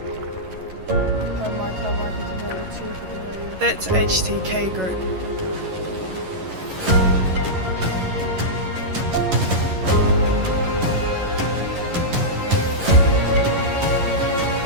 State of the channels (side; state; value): left; late; 11 ms